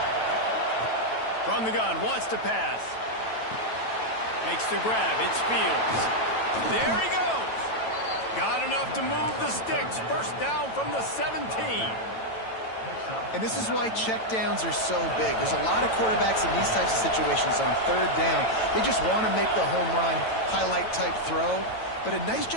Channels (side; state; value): right; late; 9.1 ms